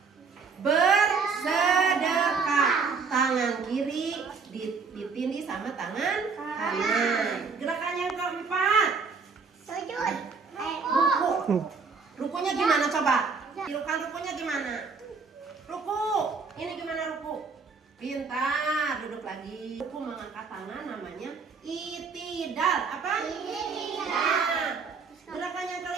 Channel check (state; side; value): quieter; left; 5.0 dB